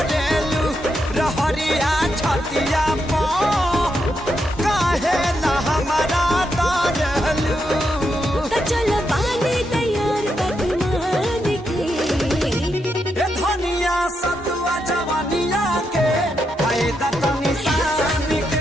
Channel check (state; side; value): normal; both; correlation 0.82